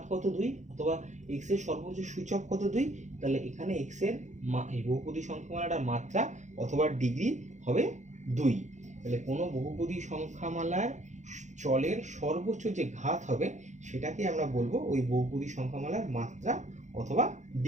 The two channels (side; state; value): left; late; 0.35 ms